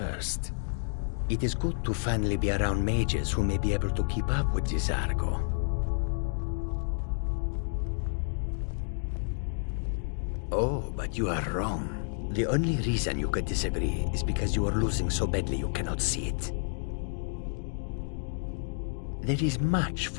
It is good to finally be around mages who may be able to keep up with Cesargo. Oh, but you are wrong. The only reason you could disagree is because you are losing so badly you cannot see it. There is much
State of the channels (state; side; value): silent; right; digital silence